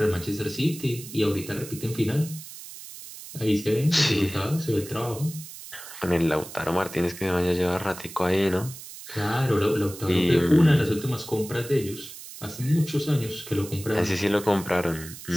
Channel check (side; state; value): right; noise; hiss, 14 dB below the sound